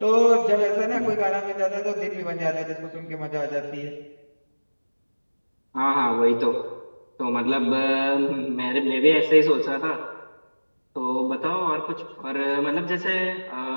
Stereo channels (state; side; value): inverted; both; correlation -1.00